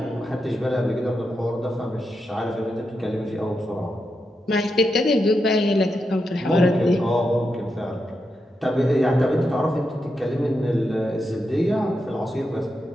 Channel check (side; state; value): both; normal; correlation 0.86